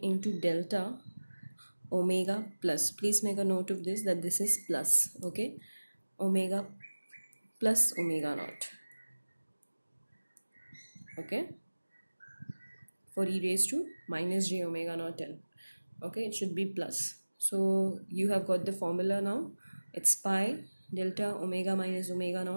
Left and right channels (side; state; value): both; inverted; correlation -1.00